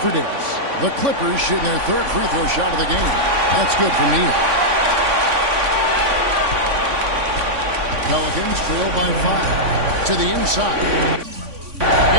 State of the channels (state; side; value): late; left; 3.5 ms